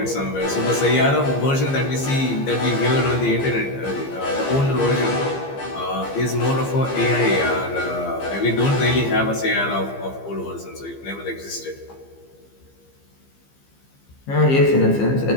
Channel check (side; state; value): right; late; 15 ms